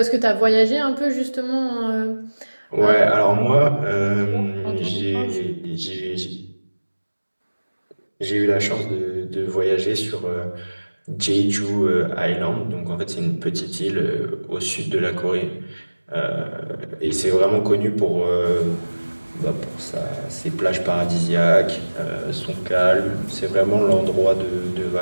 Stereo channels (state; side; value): inverted; both; correlation -1.00